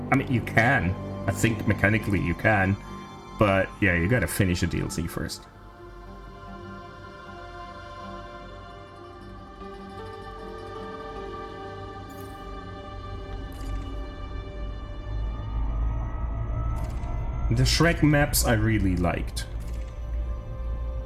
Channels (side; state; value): both; identical; correlation 1.00